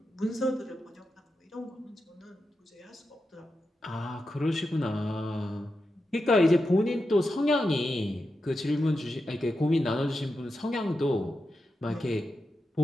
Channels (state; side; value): normal; both; correlation 0.89